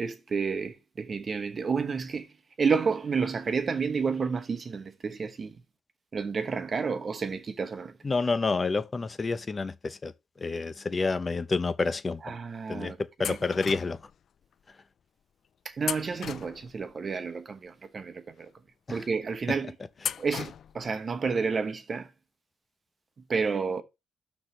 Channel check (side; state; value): both; normal; correlation 0.86